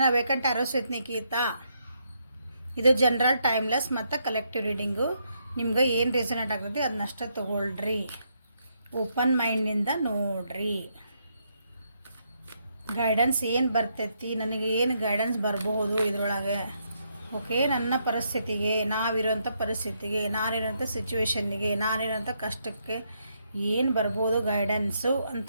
vacant arrows with Nikhita. ಇದು ಜನರಲ್ ಟೈಮ್ಲೆಸ್ ಮತ್ತು ಕಲೆಕ್ಟಿವ್ ರೀಡಿಂಗು. ನಿಮ್ಗೆ ಏನು ರೆಸನೇಟ್ ಆಗ್ತದೆ ಅದನ್ನಷ್ಟೇ ತೊಗೊಳ್ರಿ, ಓಪನ್ ಮೈಂಡಿಂದ ನೋಡ್ರಿ. ಗೈಡೆನ್ಸ್ ಏನು ಬರ್ತೈತಿ, ನನಗೆ ಏನು ಗೈಡೆನ್ಸ್ ಬರಬಹುದು ಇದರೊಳಗೆ. ಓಕೆ, ನನ್ನ ಪರಿಸ್ಥಿತಿಗೆ, ನಾವಿರೋಂಥ ಪರಿಸ್ಥಿತಿಗೆ, ನಾನಿರೋಂಥ ಸಿಚುವೇಶನ್ನಿಗೆ, ನಾನಿರೋಂಥ ಕಷ್ಟಕ್ಕೆ ಏನು ಬರ್ಬೋದು ಗೈಡೆನ್ಸು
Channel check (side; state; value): both; inverted; correlation -0.77